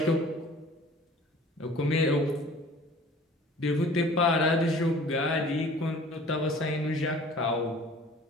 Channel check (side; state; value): both; normal; correlation 0.48